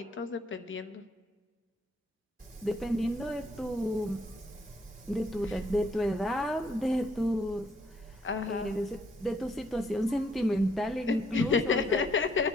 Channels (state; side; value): normal; both; correlation 0.68